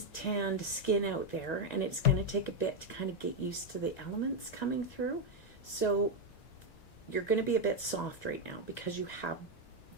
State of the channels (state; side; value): late; right; 1.9 ms